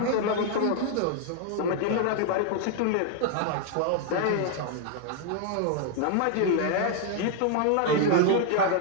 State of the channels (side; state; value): both; different; correlation 0.00